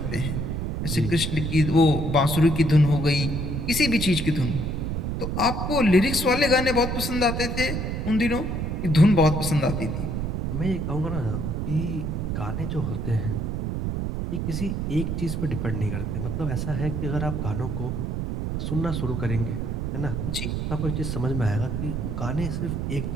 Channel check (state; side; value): noise; right; rumble, 2 dB below the sound